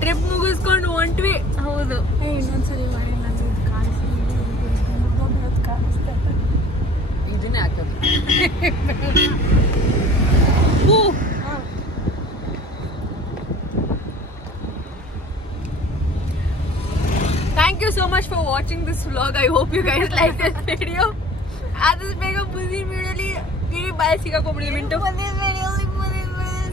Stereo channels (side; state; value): both; normal; correlation 0.48